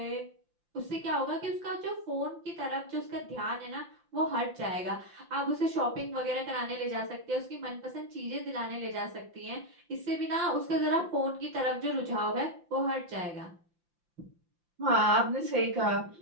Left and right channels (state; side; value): late; left; 5.8 ms